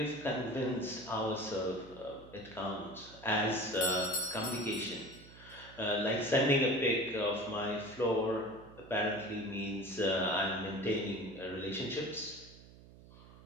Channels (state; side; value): noise; right; hum, 20 dB below the sound